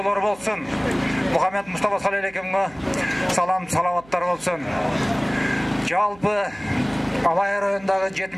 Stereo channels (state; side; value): noise; right; hum, 24 dB below the sound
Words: болсун. Мухаммед Мустафа саллаллаху салам салаваттар болсун. Жалпы Алай районундагы